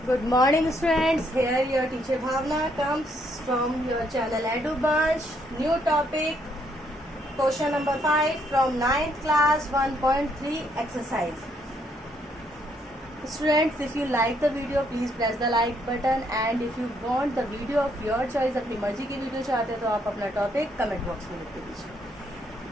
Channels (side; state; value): both; normal; correlation 0.71